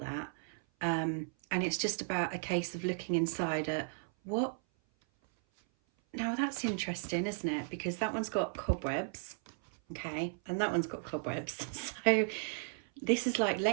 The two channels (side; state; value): left; silent; 54 dB below the other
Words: And it's just about a case of looking inside at what. Now that's interesting, isn't it? Because that one's got cobwebs, okay? And that one's got cobwebs. So this is like